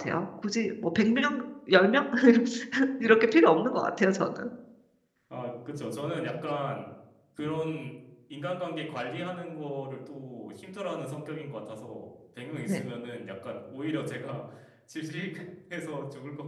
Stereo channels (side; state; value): both; identical; correlation 1.00